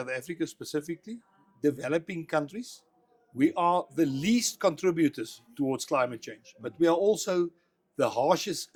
Africa specifically, developing countries, we are the least contributors towards climate change, but we are also the harshest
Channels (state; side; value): identical; both; correlation 1.00